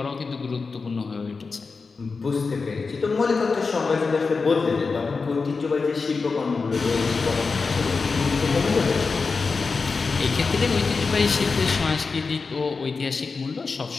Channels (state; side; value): quieter; right; 4.5 dB